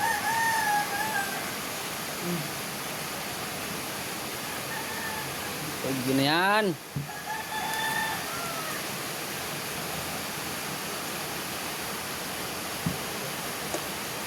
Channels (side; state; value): both; identical; correlation 1.00